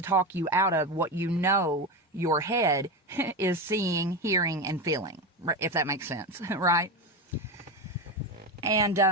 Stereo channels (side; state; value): both; normal; correlation 0.18